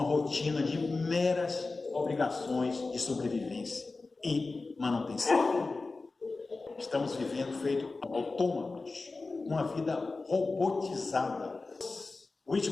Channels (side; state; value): right; quieter; 3.7 dB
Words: rotina de meras obrigações de sobrevivência e manutenção. Estamos vivendo feito autômatos, uma vida robotizada.